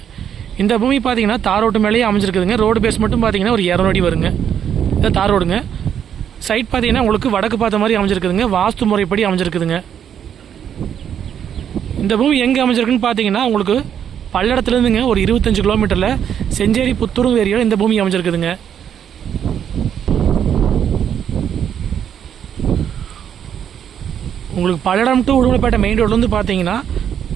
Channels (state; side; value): quieter; left; 8.9 dB